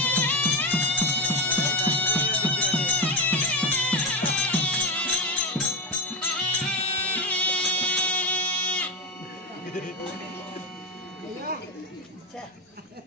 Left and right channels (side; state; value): both; normal; correlation 0.14